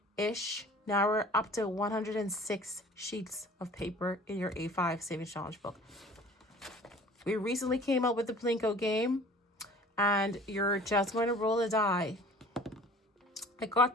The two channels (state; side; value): normal; both; correlation 0.47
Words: Now we're up to 106 sheets of paper in your A5 Savings Challenge book. We recently came up with the Plinko game, and you're just going to roll a die. I